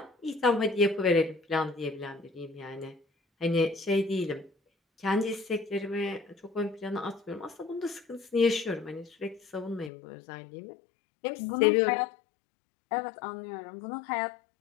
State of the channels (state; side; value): drops out; right; at 9.9 s